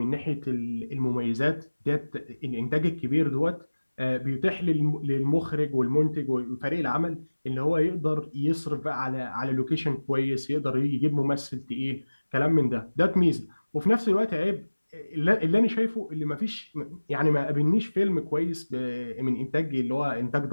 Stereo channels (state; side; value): inverted; both; correlation -1.00